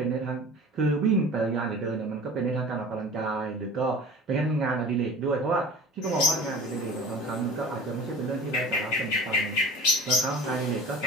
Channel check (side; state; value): both; normal; correlation 0.39